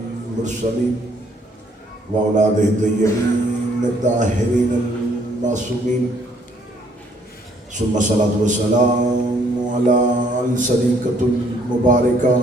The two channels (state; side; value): normal; both; correlation 0.65